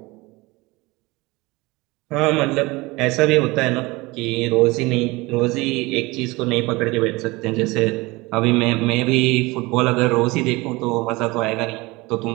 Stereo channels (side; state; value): left; quieter; 22.8 dB